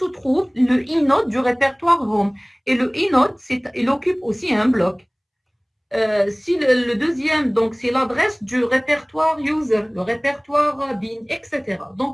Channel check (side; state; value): both; identical; correlation 1.00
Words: trouve le inode du répertoire home. Et le inode, il occupe aussi un bloc. Si le deuxième, donc c'est l'adresse du répertoire user, le répertoire bin, etc.